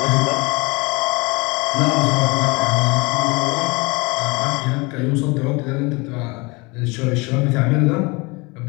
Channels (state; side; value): quieter; right; 26.5 dB